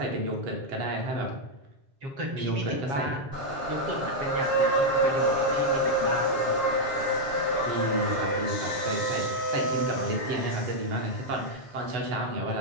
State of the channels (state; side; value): late; left; 7.3 ms